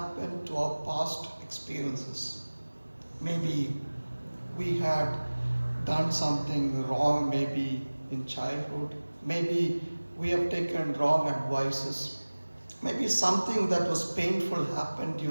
to our past experiences. Maybe we had done something wrong, maybe in childhood. Maybe we have taken wrong advices. Maybe something that was painful happened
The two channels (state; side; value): inverted; both; correlation -1.00